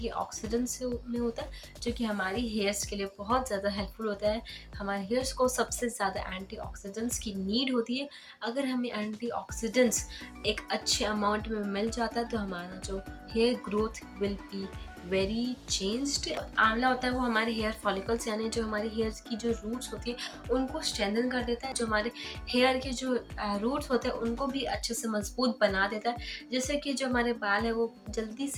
में होता है जो कि हमारी हेयर्स के लिए बहुत ज़्यादा हेल्पफुल होता है। हमारे हेयर्स को सबसे ज़्यादा एंटीऑक्सीडेंट्स की नीड होती है। अगर हमें एंटीऑक्सीडेंट्स एक अच्छे अमाउंट में मिल जाता है तो हमारा जो hair growth will be very changed. आंवला होता है वो हमारे हेयर फॉलिकल्स यानी जो हमारी हेयर्स की जो रूट्स होती है उनको स्ट्रेंथन कर देता है। जो हमारे हेयर के जो रूट्स होते हैं उनको भी अच्छे से मजबूत बना देता है, जिससे कि जो हमारे बाल है वो जल्दी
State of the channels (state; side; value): identical; both; correlation 1.00